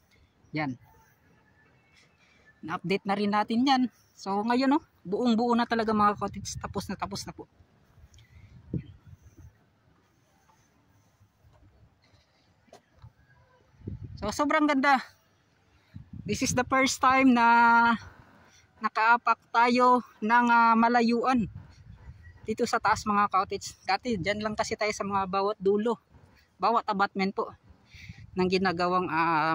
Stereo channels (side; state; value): both; identical; correlation 1.00